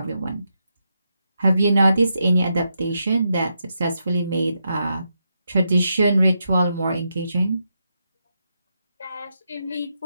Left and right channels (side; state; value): both; inverted; correlation -0.83